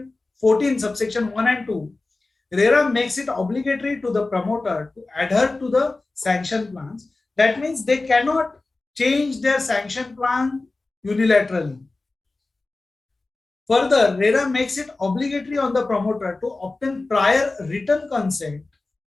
14 subsection 1 and 2, Rera makes it obligatory to the promoter to adhere to the sanction plans. That means they cannot change their sanction plan unilaterally. Further, Rera makes it obligatory on the promoter to obtain prior written consent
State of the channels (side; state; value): right; quieter; 3.3 dB